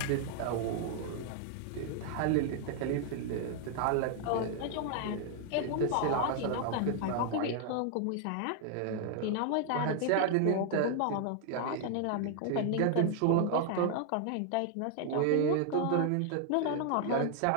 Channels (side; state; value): both; different; correlation 0.00